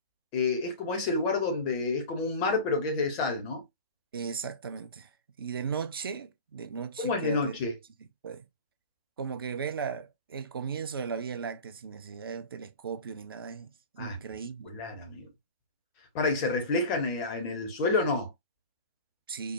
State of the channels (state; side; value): inverted; both; correlation -0.33